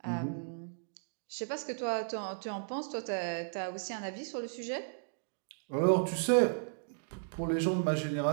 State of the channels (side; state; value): left; silent; digital silence